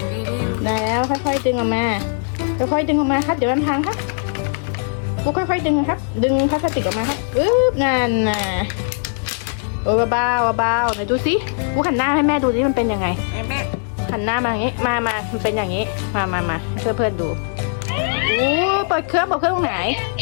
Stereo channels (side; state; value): right; silent; digital silence